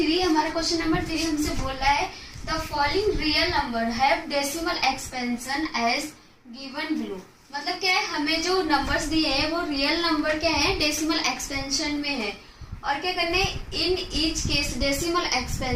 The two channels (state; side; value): identical; both; correlation 1.00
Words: हमारा क्वेश्चन नंबर 3 हमसे बोल रहा है the following real number have decimal expansion as given below. मतलब क्या है, हमें जो नंबर्स दिए हैं वो रियल नंबर क्या है, डेसिमल एक्सपेंशन में है। और क्या करने, in each case decimal